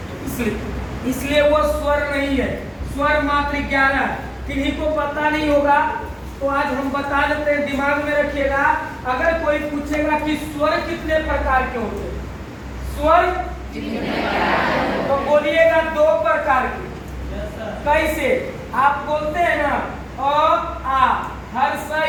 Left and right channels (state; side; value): identical; both; correlation 1.00